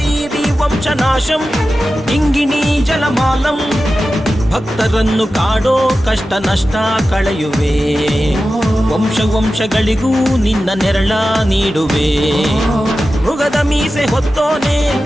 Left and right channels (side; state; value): both; normal; correlation 0.93